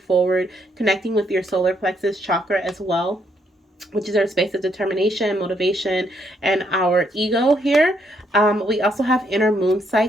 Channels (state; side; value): normal; both; correlation 0.73